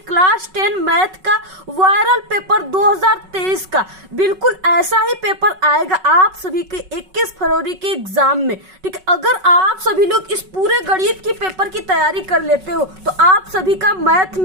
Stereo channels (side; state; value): left; late; 5.3 ms